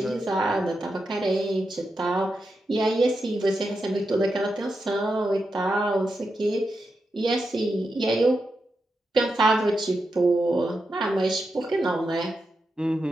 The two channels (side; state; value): both; normal; correlation 0.87